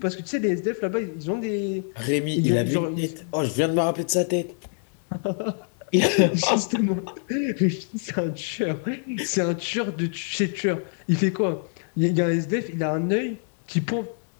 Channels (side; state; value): right; silent; 59 dB below the other